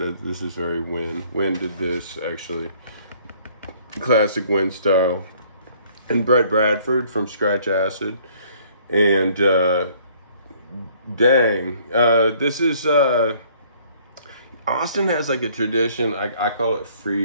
is very Win. Win did this actually, classic Win style. And Brett Bradford from Scratch Acid, and this is Austin has like a tradition. I call it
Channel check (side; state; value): both; inverted; correlation -0.60